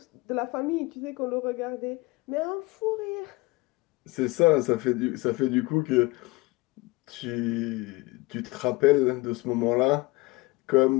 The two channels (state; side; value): quieter; right; 23.0 dB